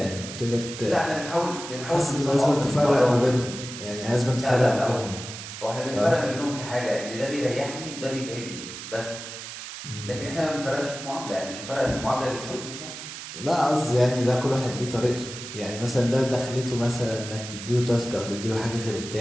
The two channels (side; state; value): right; noise; hiss, 10 dB below the sound